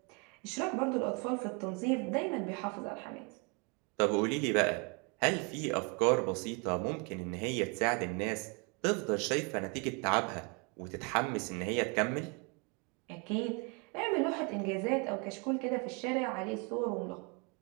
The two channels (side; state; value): left; quieter; 32.3 dB